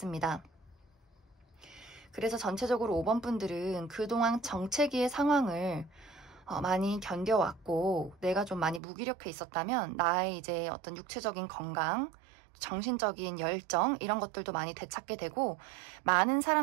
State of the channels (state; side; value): drops out; left; at 8.8 s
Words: 그래서 전체적으로 5번 분들은 그동안 정체기의 상황을 많이 견뎌왔고 내가 좀 많이 무기력해 있었다면 나의 이제 어떤 육체적인 건강, 정신적인 열정 이런 것들도 많이 되찾게 되고 많은